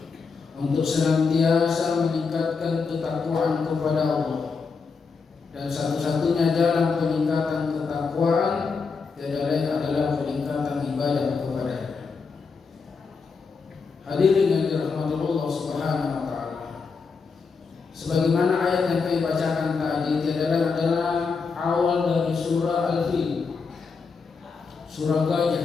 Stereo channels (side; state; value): right; quieter; 5.0 dB